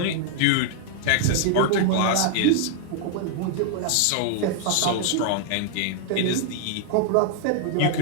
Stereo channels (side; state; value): both; different; correlation 0.00